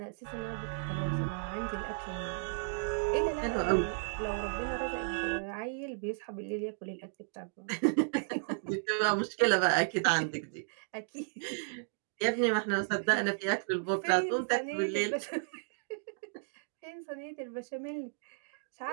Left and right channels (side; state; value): left; silent; digital silence